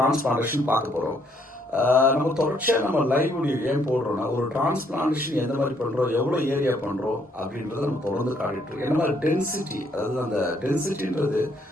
பார்க்க போறோம். நம்ம தொடர்ச்சியா நம்ம லைவ் வீடியோ ஏன் போடுறோம்னா, ஒரு டிரான்ஸ்பிளான்டேஷன் எந்த மாதிரி பண்றோம், எவ்வளவு ஏரியா பண்றோம் அப்படின்றத நம்ம தொடர்ந்து காட்டிட்டு இருக்கோம். என்ன மாதிரி டென்சிட்டி, அதாவது அந்த டென்சிட்டின்றது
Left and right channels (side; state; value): both; normal; correlation 0.69